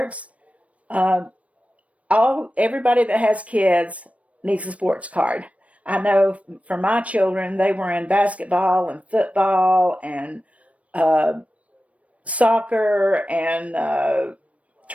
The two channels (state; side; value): late; left; 0.065 ms